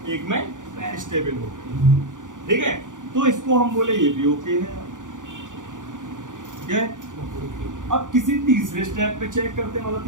1 में स्टेबल हो गई, ठीक है? तो इसको हम बोले ये भी ओके है। क्या है? अब किसी तीसरे स्टेप पे चेक करते हैं, मतलब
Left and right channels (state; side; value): late; left; 0.87 ms